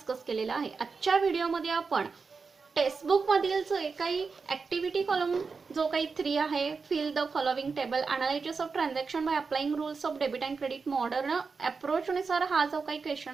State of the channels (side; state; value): left; quieter; 4.9 dB